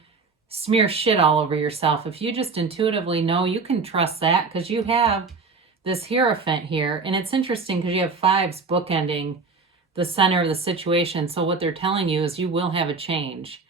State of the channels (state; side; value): quieter; left; 4.4 dB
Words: smear shit all over yourself. If you just intuitively know, you can trust that, because you have this Hierophant here. And it's interesting because you have fives bookending the center of the situation. So what they're telling you is you will have a change.